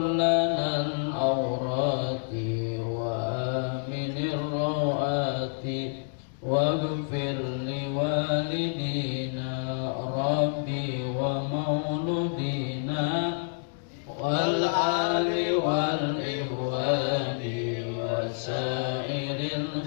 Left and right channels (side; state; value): right; silent; digital silence